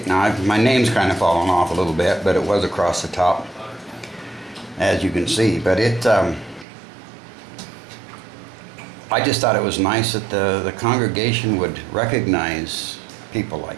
Now, my name's kind of fallen off a little bit, but it was across the top, as you can see. But I just thought it was nice that the congregation would recognize people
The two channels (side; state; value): left; drops out; at 6.7 s